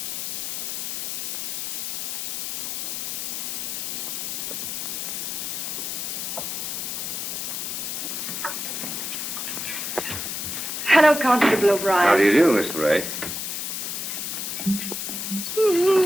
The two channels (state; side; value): noise; left; hiss, 3 dB below the sound